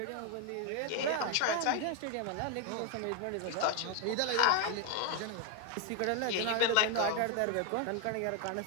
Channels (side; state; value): both; different; correlation 0.01